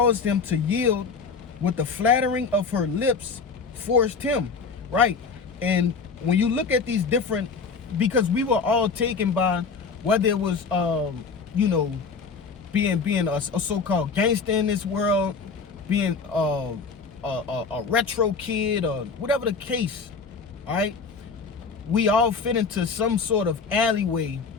him to yield. With the flattering of her lips, forced him. Right. And when you look at these different, because we were all taken by whether it was you know, being a so-called gangster in this world, being a retro kid, or whatever the case, all right? We all fit into some sort of alleyway,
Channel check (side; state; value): right; quieter; 5.0 dB